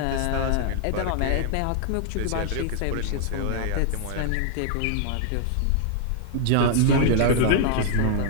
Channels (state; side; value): different; both; correlation 0.00